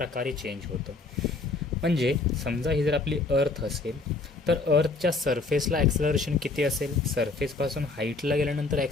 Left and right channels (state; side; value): quieter; right; 3.6 dB